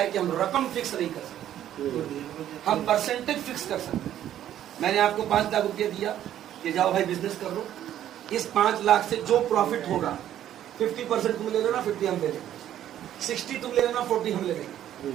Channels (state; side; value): quieter; left; 11.5 dB